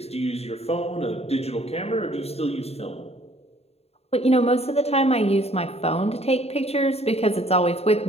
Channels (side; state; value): right; late; 0.30 ms